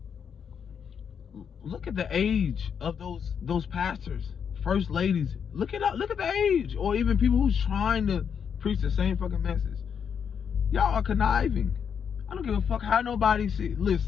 look at the age of those pastors, first ladies. Look at the age, or even people who's trying to preach the same fucking message. Y'all are conniving. I don't give a fuck how nobody see.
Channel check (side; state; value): right; quieter; 7.3 dB